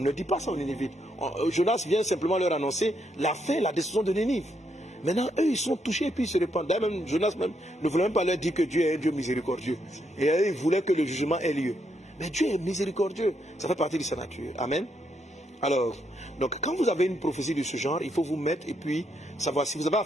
dit pas ça aux Ninivites. Jonas vient simplement leur annoncer la fin, la décision de Ninive. Maintenant, eux, ils sont touchés et puis ils se repentent. D'ailleurs, même Jonas même, ne voulait même pas leur dire que Dieu est un Dieu miséricordieux. Et eux, ils voulaient que le jugement ait lieu. Mais Dieu est miséricordieux. Ça fait partie de sa nature. Amen. Alors, donc, quand vous avez une prophétie de ce genre, il faut vous mettre et puis savoir. Si vous avez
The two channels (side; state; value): both; normal; correlation 0.77